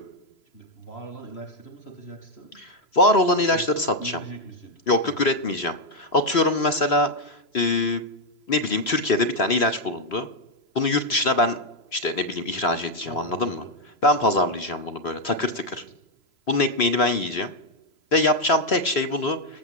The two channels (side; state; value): right; late; 3.0 ms